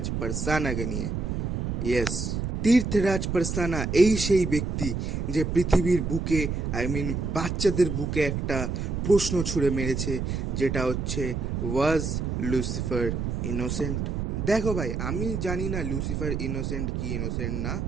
পারসানাকে নিয়ে। ইয়েস, তীর্থরাজ পারসানা এই সেই ব্যক্তি যে পৃথিবীর বুকে, বাচ্চাদের বুকে একটা প্রশ্ন ছুঁড়ে মেরেছে, যেটা হচ্ছে, ওয়াজ লুসিফার ইনোসেন্ট? দেখো ভাই, আমি জানি না লুসিফার ইনোসেন্ট কি ইনোসেন্ট না,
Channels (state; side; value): noise; right; rumble, 2 dB below the sound